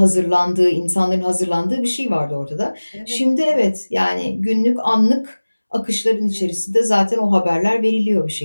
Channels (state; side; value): inverted; both; correlation -1.00